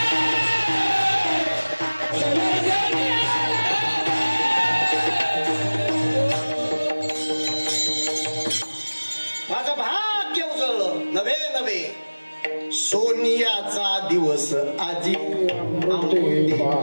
सोनियाचा दिवस आजी.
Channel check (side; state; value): both; inverted; correlation -1.00